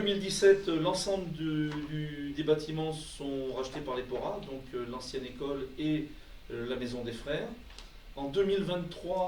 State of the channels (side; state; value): both; identical; correlation 1.00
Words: l'ensemble des bâtiments sont rachetés par l'EPORA, donc l'ancienne école et la Maison des Frères. En